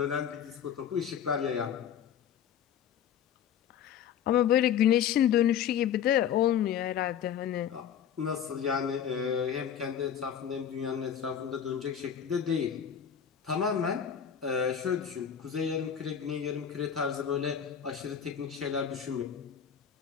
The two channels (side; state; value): right; quieter; 8.7 dB